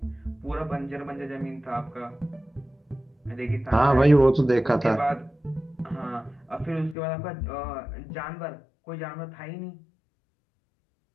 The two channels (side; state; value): right; drops out; at 7.0 s